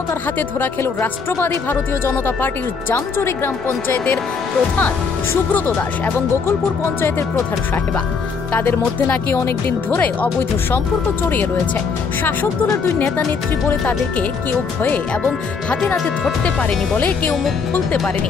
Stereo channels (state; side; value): quieter; right; 5.3 dB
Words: হাতে ধরা খেল রাষ্ট্রবাদী ভারতীয় জনতা পার্টির জামচুরি গ্রাম পঞ্চায়েতের প্রধান সুব্রত দাস এবং গোকুলপুর পঞ্চায়েতের প্রধান সাহেবা। তাদের মধ্যে নাকি অনেকদিন ধরে অবৈধ সম্পর্ক জড়িয়ে রয়েছে। শাসক দলের দুই নেতা নেত্রী বলে তাদেরকে কেউ ভয়ে এবং হাতে নাতে ধরতে পারেনি বলে কেউ মুখ খুলতে পারেনি।